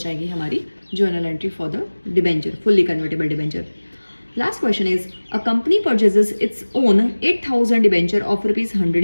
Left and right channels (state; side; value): inverted; both; correlation -1.00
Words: हमारी journal entry for the debenture, fully convertible debenture. Last question is, a company purchases its own 8,000 debenture of